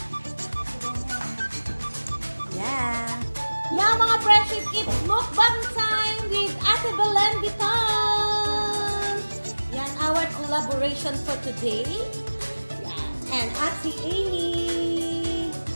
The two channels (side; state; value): both; inverted; correlation -1.00